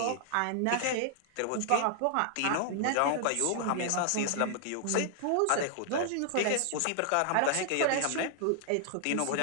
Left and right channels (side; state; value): both; different; correlation 0.00